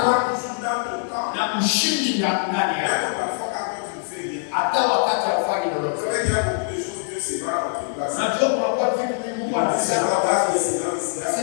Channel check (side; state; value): right; silent; digital silence